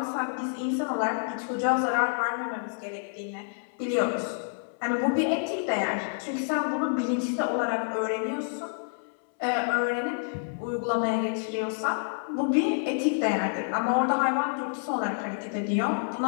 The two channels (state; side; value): silent; right; 59 dB below the other